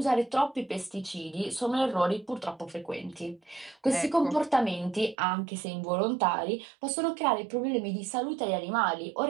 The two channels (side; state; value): left; drops out; at 5.2 s